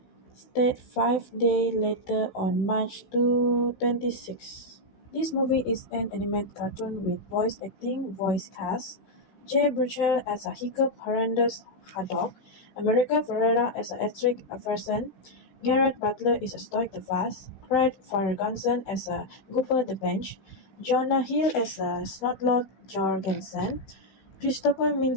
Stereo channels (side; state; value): right; late; 16 ms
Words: State 5 days later on March 26. This movie is an animated cartoon with voice cast. Jay Burchell as a Hiccup Horrendous Haddock, America Ferrera as a Estric Averson, Garrett Butler is a Stoic the Fast, Craig Ferguson as a Gooper the Bench, Jonah Hill as a Snotlord Jorgensen, Christopher